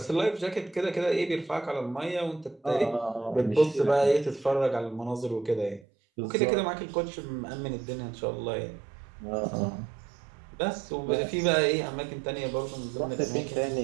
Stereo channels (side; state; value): left; drops out; at 5.9 s